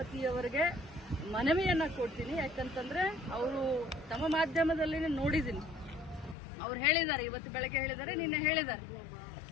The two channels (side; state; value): right; drops out; at 6.4 s